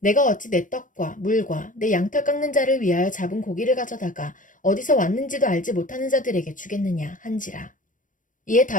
내가 어찌 내 떡과 물과 내 양털 깎는 자를 위하여 잡은 고기를 가져다가 어디서 왔는지도 알지 못하는 자들에게 주겠느냐 한지라. 이에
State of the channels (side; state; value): right; late; 0.38 ms